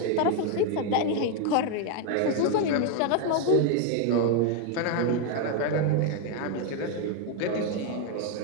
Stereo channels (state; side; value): different; both; correlation 0.01